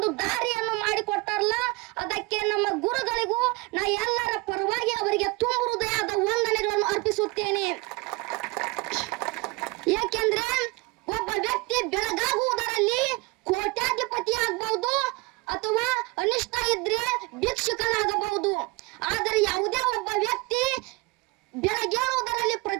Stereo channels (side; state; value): left; quieter; 24.8 dB